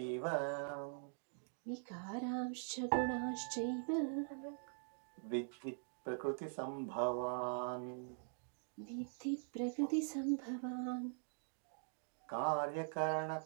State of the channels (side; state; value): left; silent; digital silence